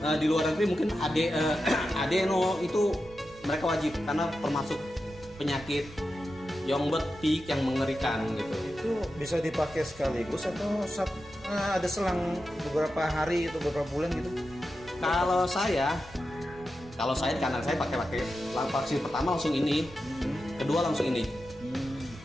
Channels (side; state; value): both; normal; correlation 0.90